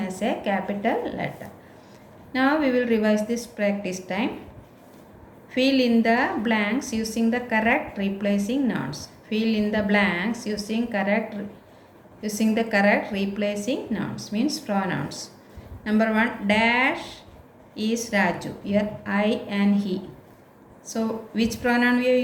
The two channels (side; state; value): both; identical; correlation 1.00